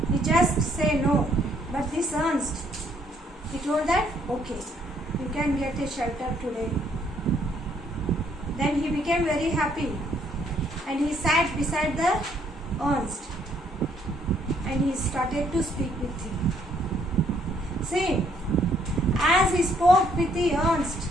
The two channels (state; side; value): normal; both; correlation 0.67